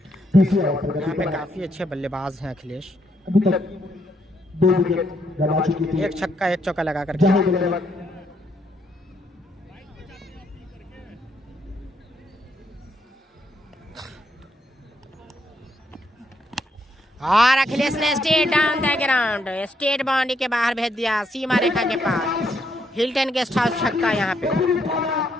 पे काफी अच्छे बल्लेबाज हैं अखिलेश। अभी तक 2 विकेट गंवा चुकी थी, 1 छक्का 1 चौका लगा करके। और अखिलेश ने state down the ground, state boundary के बाहर भेज दिया, सीमा रेखा के पास। हिल्टन गेस्ट हाउस छक्का यहाँ पे।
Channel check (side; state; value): both; normal; correlation 0.75